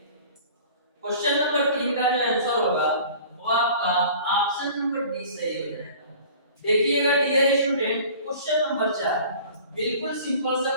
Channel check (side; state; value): both; inverted; correlation -0.45